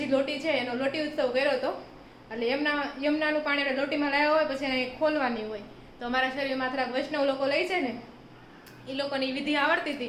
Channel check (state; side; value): identical; both; correlation 1.00